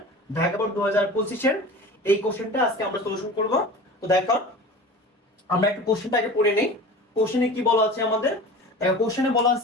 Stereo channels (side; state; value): both; normal; correlation 0.36